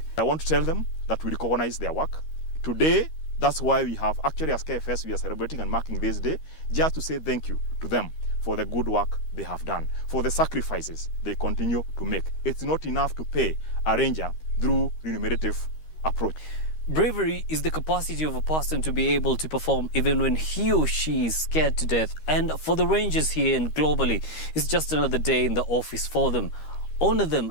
I want to tell them that we recognize their work. Today, that's why we have actually as KFS, we are celebrating and marking this day, just to say thank you to them for the good work they have done, for the sacrifices they continue to make. It's not enough to pay a ranger through remunerative approach. Bravery is the capacity of a person to be able to perform even when he or she is scared to death. And for the rangers here and globally, it's just another day in the office for them. Honor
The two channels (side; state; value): right; late; 13 ms